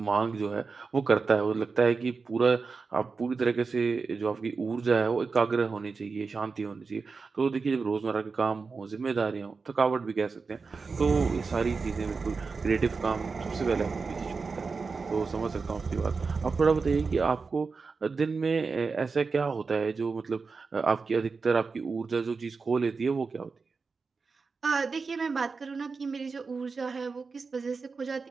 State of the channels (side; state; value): left; quieter; 4.6 dB